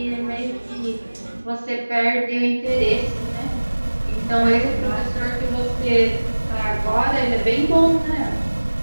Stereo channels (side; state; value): both; inverted; correlation -1.00